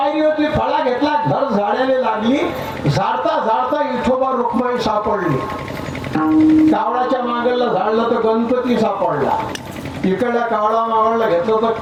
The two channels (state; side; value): identical; both; correlation 1.00